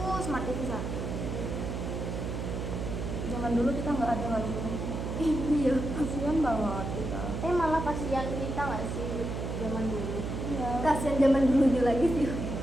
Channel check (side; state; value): right; noise; hum, 4 dB below the sound